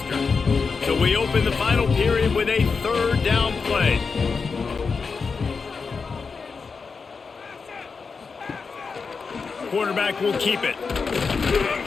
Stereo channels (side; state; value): right; quieter; 5.0 dB